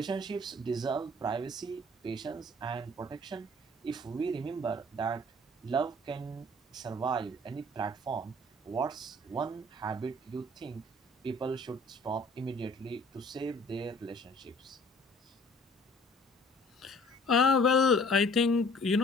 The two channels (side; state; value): both; normal; correlation 0.53